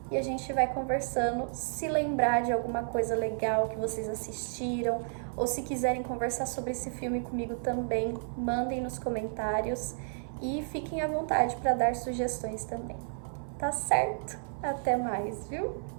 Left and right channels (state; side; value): silent; left; 57 dB below the other